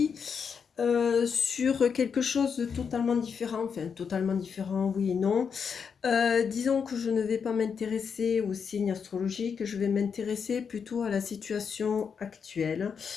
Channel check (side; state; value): right; quieter; 6.4 dB